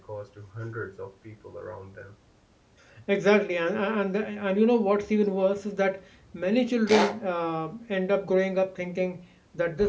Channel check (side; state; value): both; identical; correlation 1.00